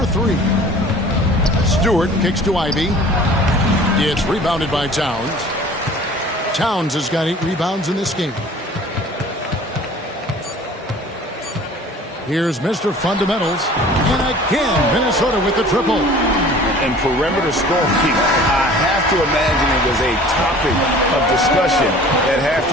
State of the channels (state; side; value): normal; both; correlation 0.47